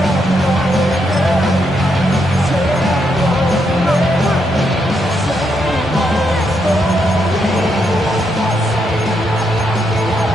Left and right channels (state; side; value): normal; both; correlation 0.79